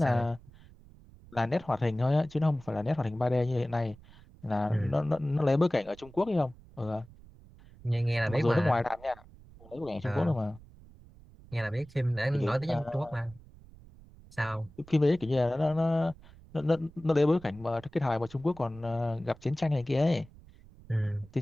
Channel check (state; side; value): noise; right; rumble, 22 dB below the sound